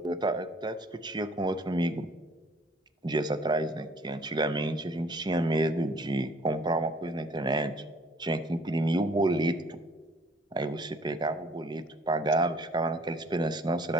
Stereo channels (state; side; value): normal; both; correlation 0.57